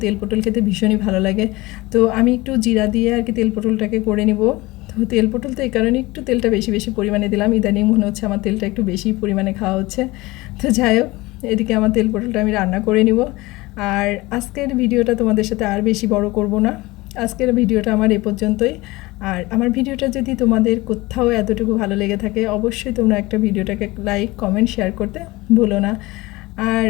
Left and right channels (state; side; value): quieter; right; 21.1 dB